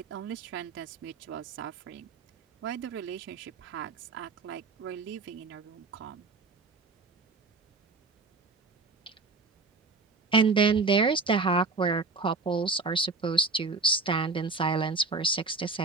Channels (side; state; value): left; quieter; 3.8 dB